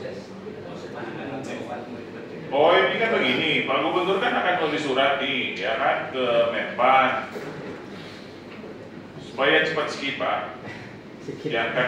Oh ini kan begini, Pak Gubernur kan akan nulis surat nih, ya kan, ke Menpan supaya cepat skip Pak,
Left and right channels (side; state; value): both; identical; correlation 1.00